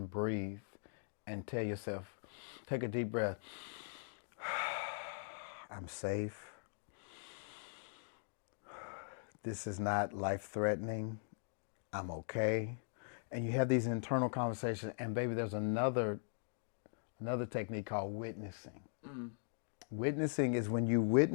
breathe and tell yourself, take a deep breath. I'm safe. This is not life-threatening. I'm okay. And you have these internal conversations. And baby, there's another technique called witnessing. Witnessing is when you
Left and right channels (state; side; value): silent; right; digital silence